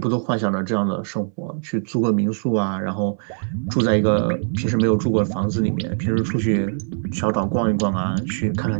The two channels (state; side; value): silent; left; 64 dB below the other